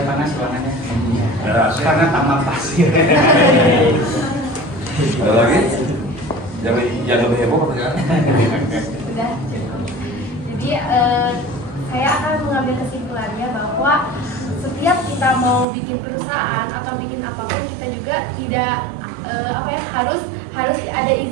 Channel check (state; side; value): drops out; left; at 15.7 s